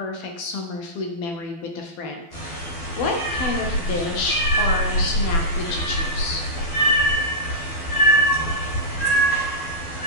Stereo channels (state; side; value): late; right; 12 ms